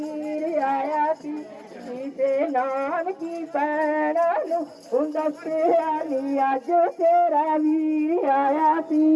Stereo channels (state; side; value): identical; both; correlation 1.00